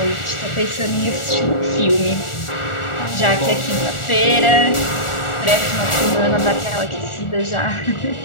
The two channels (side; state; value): right; late; 1.4 ms